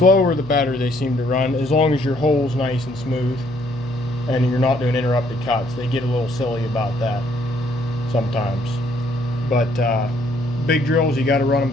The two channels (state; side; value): noise; left; hum, 19 dB below the sound